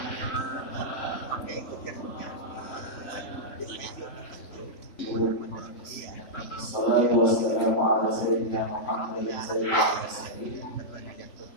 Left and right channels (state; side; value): late; right; 3.5 ms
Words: Salatu wassalamu ala sayyidina Muhammadin sayyidil mursalin